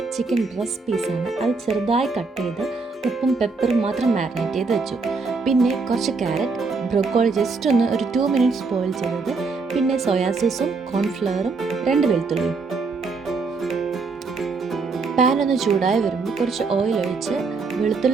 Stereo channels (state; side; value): quieter; left; 4.3 dB